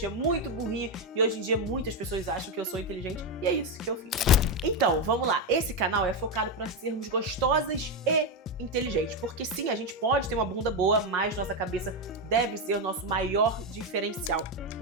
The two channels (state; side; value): normal; both; correlation 0.08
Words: muito burrinha e hoje em dia muitas pessoas acham que eu sou inteligente e é isso que eu fiz. Então, vamos lá. Esse canal é focado para sermos gostosas e inteligentes, porque sim, a gente pode ter uma bunda boa, mas nossa cabeça deve ser o nosso maior diferencial.